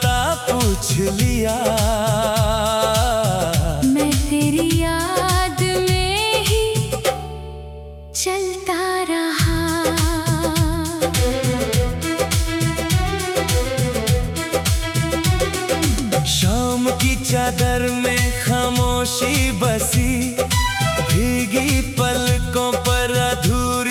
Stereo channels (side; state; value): both; identical; correlation 1.00